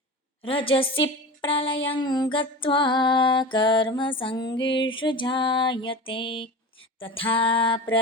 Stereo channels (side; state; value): both; normal; correlation 0.31